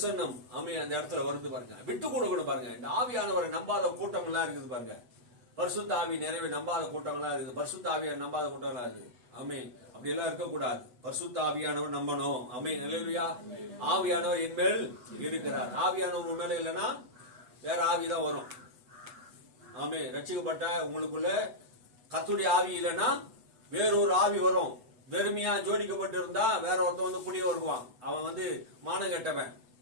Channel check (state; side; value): late; left; 8.1 ms